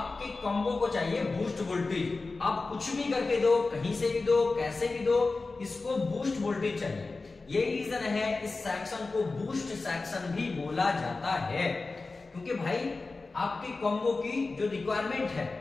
कॉम्बो को चाहिए बूस्ट वोल्टेज। आप कुछ भी करके दो, कहीं से भी दो, कैसे भी दो, इसको बूस्ट वोल्टेज चाहिए। यही रीजन है इस सेक्शन को बूस्ट सेक्शन भी बोला जाता है, क्योंकि भाई आपकी कॉम्बो की जो रिक्वायरमेंट है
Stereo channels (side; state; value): right; quieter; 3.7 dB